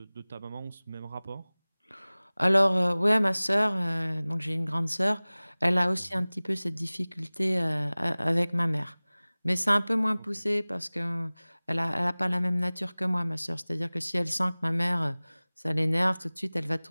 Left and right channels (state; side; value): inverted; both; correlation -0.99